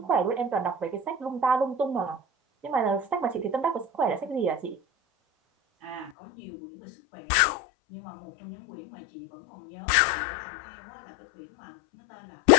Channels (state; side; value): drops out; right; at 6.1 s